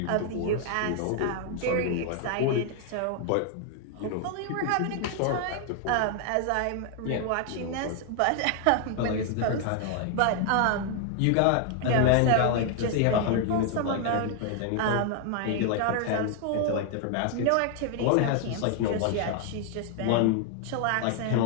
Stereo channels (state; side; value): different; both; correlation 0.00